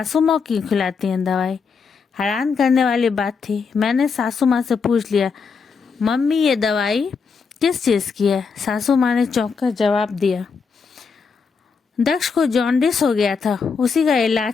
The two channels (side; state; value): right; quieter; 5.4 dB